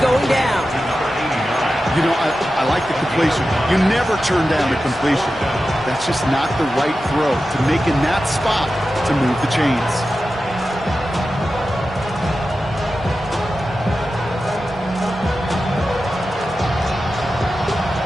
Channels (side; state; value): both; normal; correlation 0.92